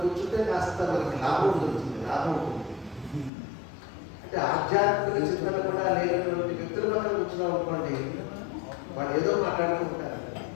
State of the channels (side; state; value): right; drops out; at 3.3 s